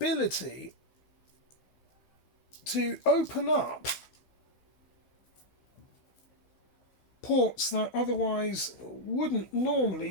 to open up ports that otherwise wouldn't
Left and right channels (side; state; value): right; late; 15 ms